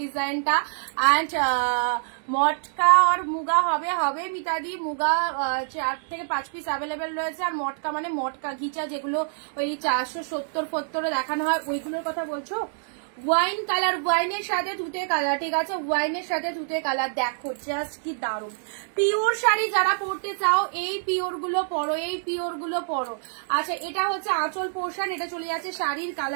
ডিজাইনটা অ্যান্ড মটকা আর মুগা হবে মিতাদি, মুগা 4 থেকে 5 পিস অ্যাভেলেবেল রয়েছে। আর মটকা মানে মটকা ঘিচা যেগুলো ওই 470 দেখানো হয় ওইগুলোর কথা বলছো? ওয়াইন কালার, ওয়াইনের সাথে তুতে কালার, ঠিক আছে ওয়াইনের সাথে তুতে কালার, দেখো জাস্ট কি দারুণ। পিওর শাড়ি যারা পরতে চাও এই পিওর গুলো পরো, এই পিওর গুলো পরো। আচ্ছা এটা হচ্ছে আঁচল পোর্শন, এটা চলে যাচ্ছে শাড়ির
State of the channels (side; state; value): left; silent; 61 dB below the other